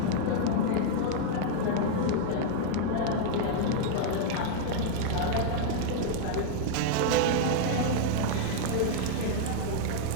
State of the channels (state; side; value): different; both; correlation -0.01